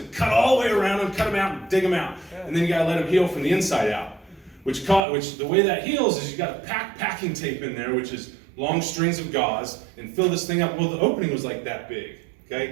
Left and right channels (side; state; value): left; drops out; at 5.0 s